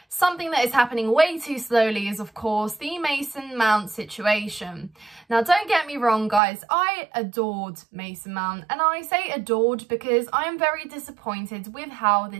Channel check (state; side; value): drops out; left; at 6.4 s